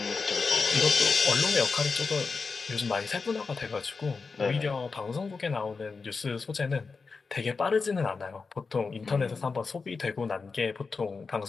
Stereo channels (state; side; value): quieter; right; 4.6 dB